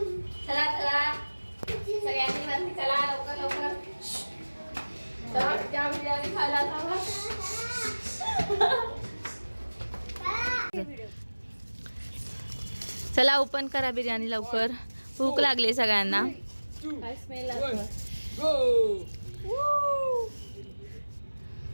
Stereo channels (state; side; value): inverted; both; correlation -1.00